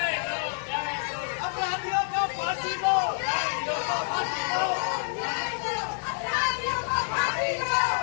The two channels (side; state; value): right; silent; 60 dB below the other